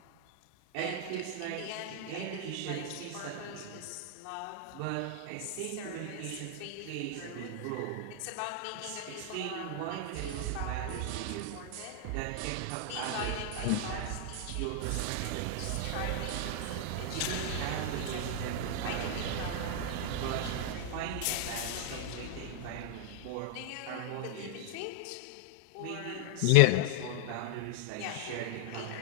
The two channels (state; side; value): different; both; correlation -0.01